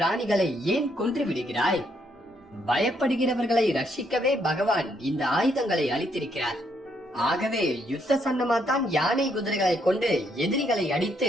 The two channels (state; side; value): normal; both; correlation 0.73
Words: ஏன் கொன்று விடுகிறாய்? பயப்படுகிறவர்களை ரட்சிக்கவே பகவான் இந்த ஆயுதங்களை அளித்திருக்கிறார். ஆகவே யுத்த சன்னமாத்தான் யானை குதிரைகளை கொண்டு எதிரிகளை அடித்து